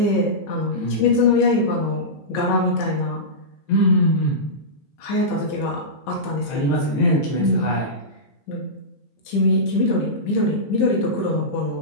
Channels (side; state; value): right; late; 15 ms